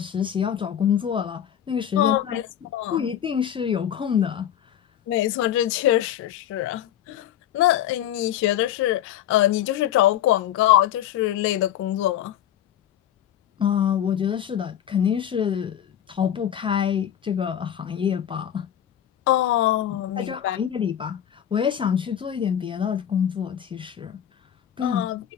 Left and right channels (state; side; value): quieter; right; 10.6 dB